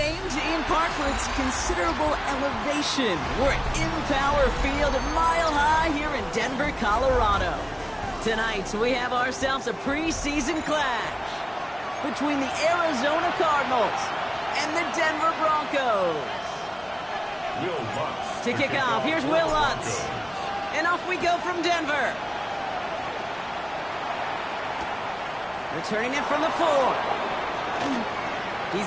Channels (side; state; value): both; identical; correlation 1.00